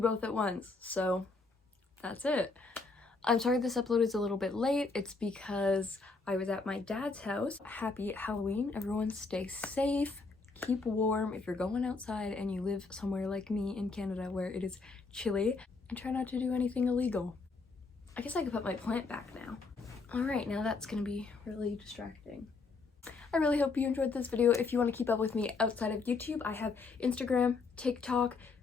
both at once? So that's it. I'm sorry this upload is a little bit late. It's because I was at my dad's house. Happy Halloween. Everyone stay safe. Keep warm if you're going outside and you live somewhere like me in Canada where it is chilly. And try not to do anything illegal. I guess I could put my plant back now. Alright, now that's gonna be really distracting. I really hope you enjoyed this video. If you want to keep up with me outside of YouTube, I have Instagram, TikTok,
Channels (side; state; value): right; quieter; 4.1 dB